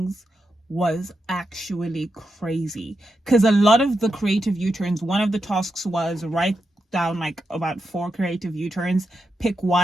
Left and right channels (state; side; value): normal; both; correlation 0.86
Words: was actually crazy. Because a lot of the creative U-turns, one of the tasks was write down like about 4 creative U-turns, pick